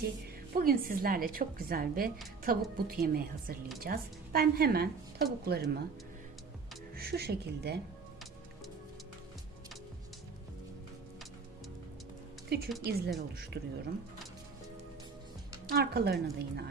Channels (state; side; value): quieter; left; 4.9 dB